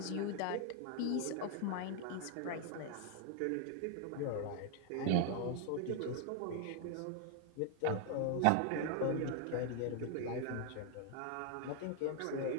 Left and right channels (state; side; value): different; both; correlation 0.00